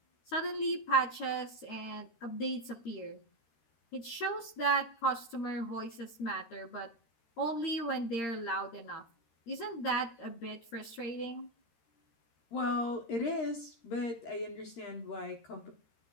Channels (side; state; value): right; late; 13 ms